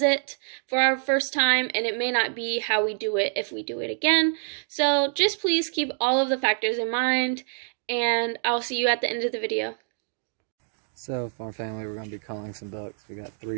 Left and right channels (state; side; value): silent; left; digital silence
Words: for our first time, and it may not be how we do it if we do it again. So just please keep all of the factors in mind, and I'll see you at the end of the video. So, farm family, we're going to be culling some ducks. We got